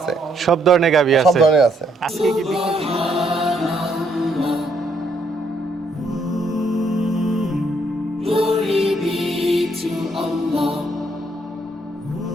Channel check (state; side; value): normal; both; correlation 0.71